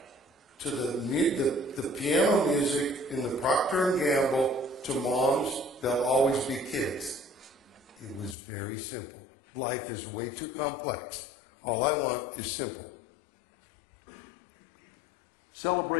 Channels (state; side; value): drops out; right; at 8.3 s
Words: to the piano music in the Procter & Gamble to Moms, They'll Always Be Kids. It was very simple. Life is way too complex. All I want is simple.